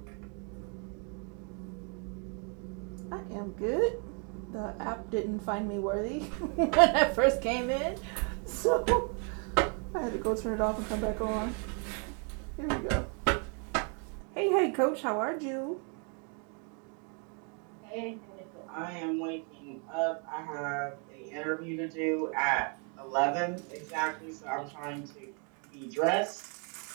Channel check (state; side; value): quieter; left; 38.7 dB